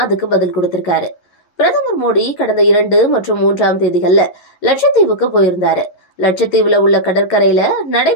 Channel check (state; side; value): late; right; 11 ms